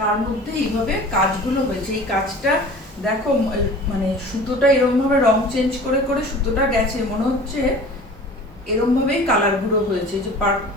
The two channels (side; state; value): both; normal; correlation 0.42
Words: মধ্যে এইভাবে কাজগুলো হয়েছে। এই কাজটা দেখো, মানে সুতোটা এরকম ভাবে রং চেঞ্জ করে করে সুতোটা গেছে, মনে হচ্ছে এরকম ভাবেই কালারগুলো হয়েছে, যে